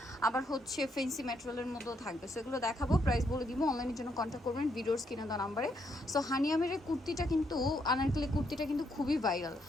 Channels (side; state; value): both; normal; correlation 0.75